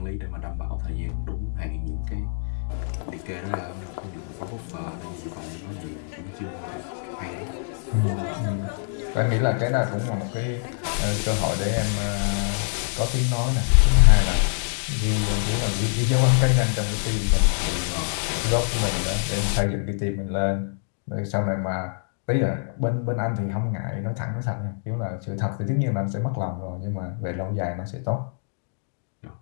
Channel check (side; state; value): right; silent; digital silence